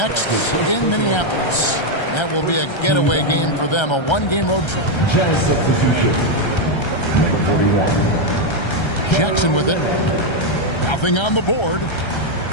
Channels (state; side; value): late; right; 1.3 ms